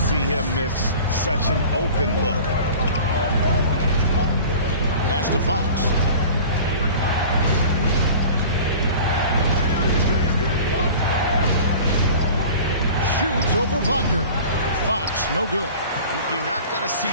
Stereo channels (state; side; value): inverted; both; correlation -0.41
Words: him miss such an open look. Pass to Fox. Shoots over Wagner. Fox, no good. You're not going to see